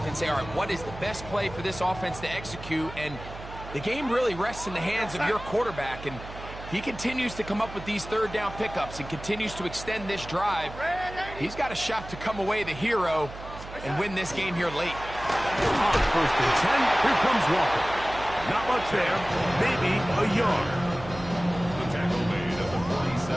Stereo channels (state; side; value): noise; right; hum, 13 dB below the sound